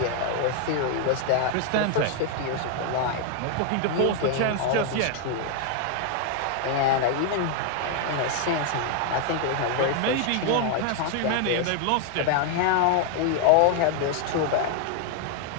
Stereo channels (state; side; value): different; both; correlation 0.00